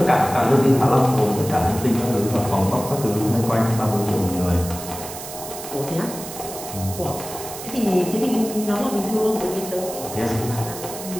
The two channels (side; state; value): right; noise; hiss, 11 dB below the sound